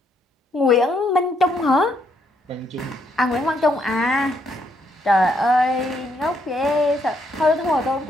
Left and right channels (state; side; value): normal; both; correlation 0.74